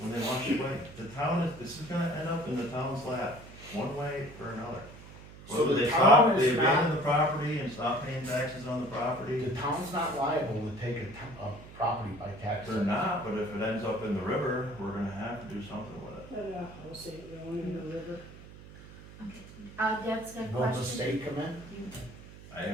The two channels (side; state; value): right; noise; hum, 17 dB below the sound